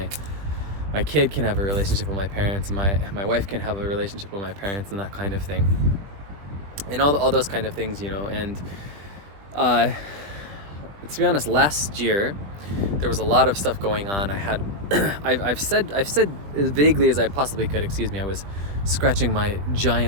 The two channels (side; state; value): left; late; 20 ms